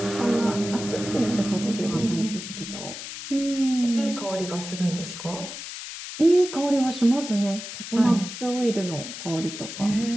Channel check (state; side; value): noise; left; hiss, 9 dB below the sound